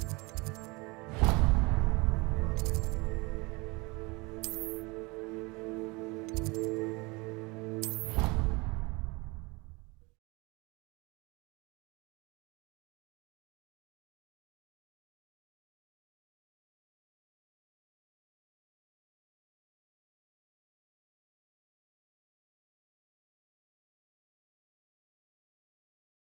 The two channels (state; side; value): quieter; left; 25.9 dB